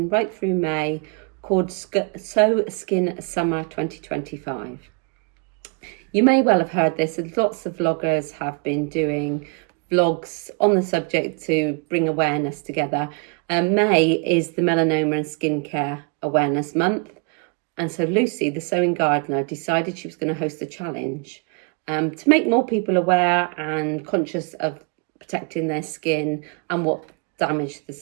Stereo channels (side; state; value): left; quieter; 36.6 dB